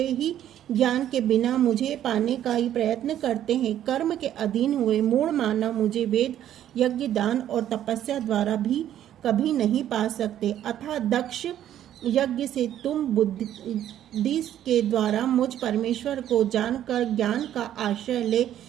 ही ज्ञान के बिना मुझे पाने का ही प्रयत्न करते हैं। कर्म के अधीन हुए मूढ़ मानव मुझे वेद, यज्ञ, दान और तपस्या द्वारा भी कभी नहीं पा सकते। अतः दक्ष, यज्ञ से तुम बुद्धि के द्वारा मुझ परमेश्वर को जानकर ज्ञान का आश्रय ले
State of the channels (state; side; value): quieter; left; 11.4 dB